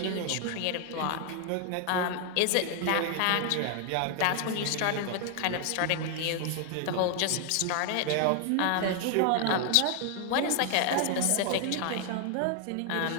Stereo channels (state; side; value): different; both; correlation 0.00